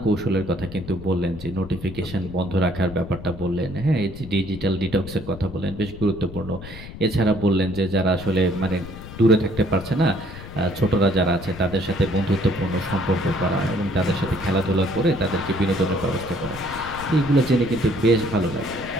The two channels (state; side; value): noise; left; rumble, 13 dB below the sound